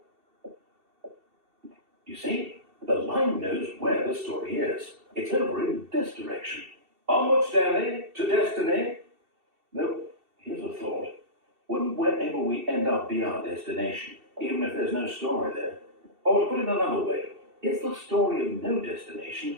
You see, the line knows where the story is. It's over in this direction. Onward, Stanley, to destiny. No, here's a thought. Wouldn't wherever we end up be our destination, even if there's no story there? Or to put it another way, is the story of no destination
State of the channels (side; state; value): left; late; 2.7 ms